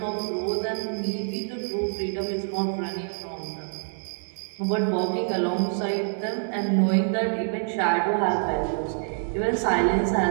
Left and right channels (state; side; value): silent; left; digital silence